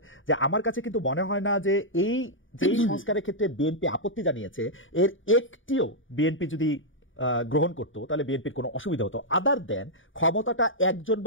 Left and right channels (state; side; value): late; right; 0.57 ms